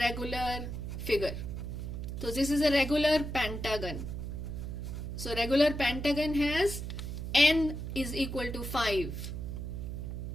figure. So this is a regular pentagon. So regular pentagon has n is equal to 5.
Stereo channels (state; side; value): noise; right; hum, 5 dB below the sound